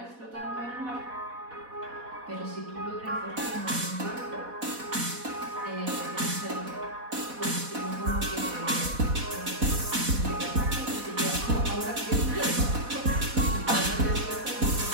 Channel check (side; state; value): left; late; 4.1 ms